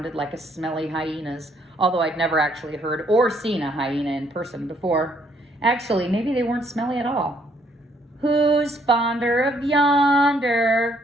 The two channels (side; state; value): both; normal; correlation 0.68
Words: like a smelly hyena's, although I'd never actually heard or seen a hyena in person before. Actually, maybe they weren't smelly at all. "Who's fonder of